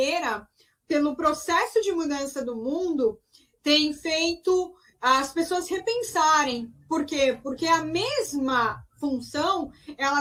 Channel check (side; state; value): both; identical; correlation 1.00